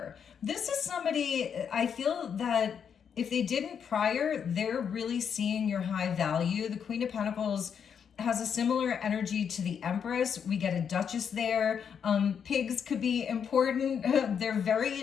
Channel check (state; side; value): quieter; right; 7.4 dB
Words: This is somebody, I feel that if they didn't prior, they're really seeing your high value. The Queen of Pentacles has a similar energy to the Empress. We get a Duchess there. Pigs could be important. They're very